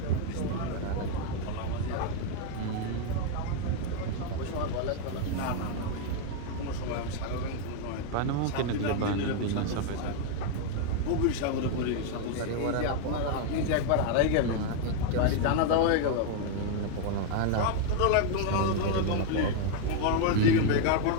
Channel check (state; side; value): different; both; correlation 0.00